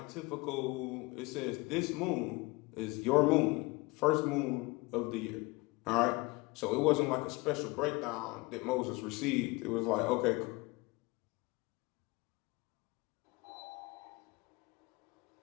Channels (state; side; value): quieter; right; 24.3 dB